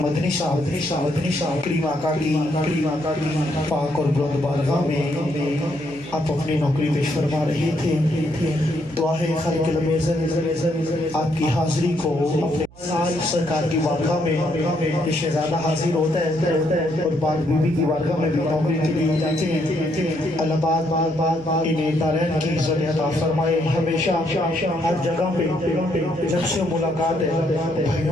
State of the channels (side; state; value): right; noise; hum, 24 dB below the sound